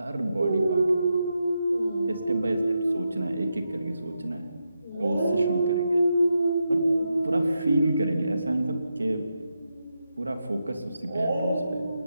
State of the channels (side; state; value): both; inverted; correlation -0.86